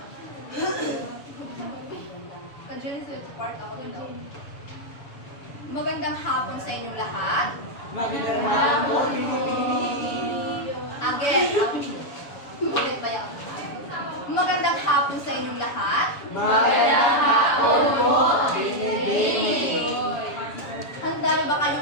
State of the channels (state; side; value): late; right; 7.0 ms